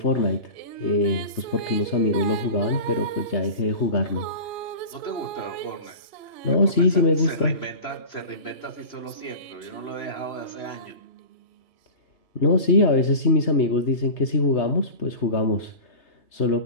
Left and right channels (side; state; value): right; late; 3.0 ms